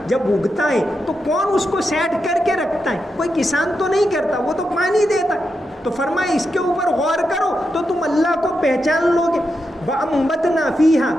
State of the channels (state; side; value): normal; both; correlation 0.86